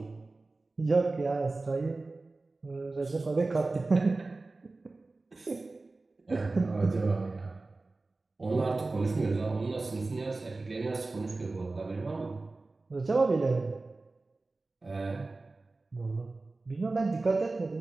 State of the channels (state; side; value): quieter; left; 3.4 dB